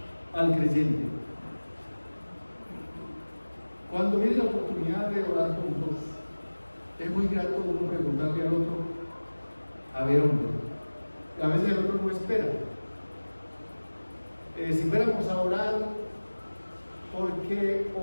al creyente. Cuando viene la oportunidad de orar juntos, es muy grato uno preguntarle al otro, a ver, hombre, a veces el otro no espera. Si fuéramos a orar, ¿por qué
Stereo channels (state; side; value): inverted; both; correlation -1.00